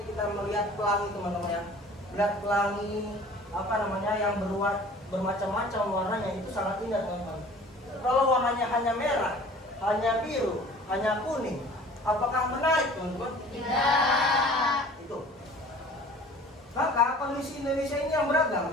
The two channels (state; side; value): normal; both; correlation 0.46